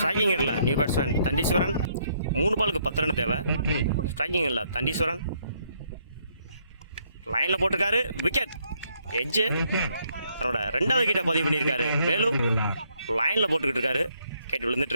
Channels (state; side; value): inverted; both; correlation -0.71